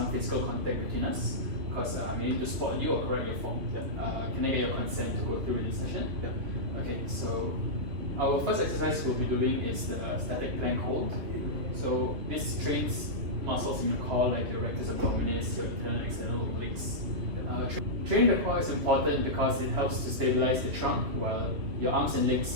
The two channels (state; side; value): late; left; 3.0 ms